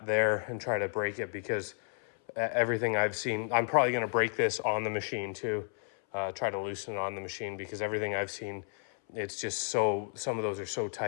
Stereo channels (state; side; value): silent; right; 56 dB below the other